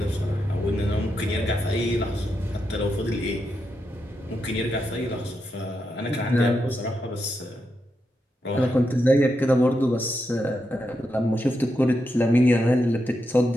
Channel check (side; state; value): both; normal; correlation 0.85